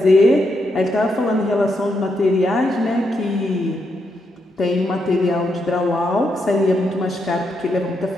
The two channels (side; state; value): both; normal; correlation 0.81